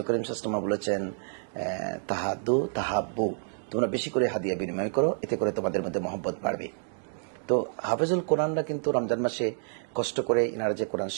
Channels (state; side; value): silent; left; digital silence